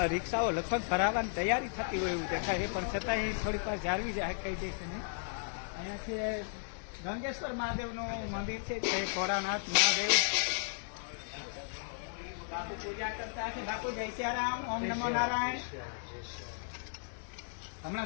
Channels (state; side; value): silent; right; digital silence